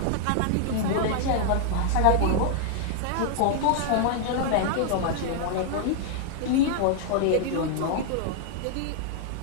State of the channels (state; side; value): different; both; correlation -0.01